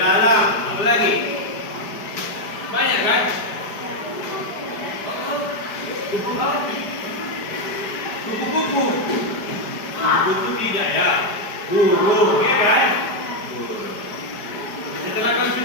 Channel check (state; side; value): late; right; 4.9 ms